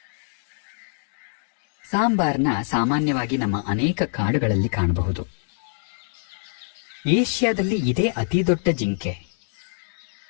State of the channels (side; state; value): right; silent; digital silence